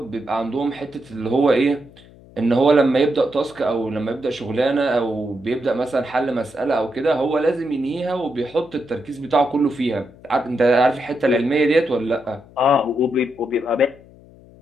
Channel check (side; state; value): left; noise; hum, 23 dB below the sound